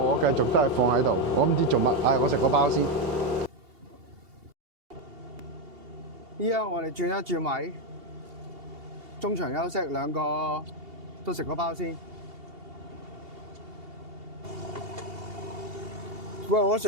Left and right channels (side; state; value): left; late; 2.8 ms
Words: 繼續都係放喺度，我唔知做乜。唉，我食個包先。依家我哋轉一轉位，中場休息，2個都食個包先。喂，我